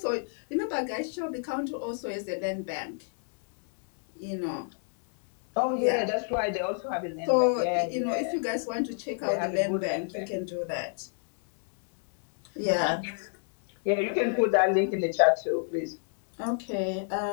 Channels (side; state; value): right; silent; 56 dB below the other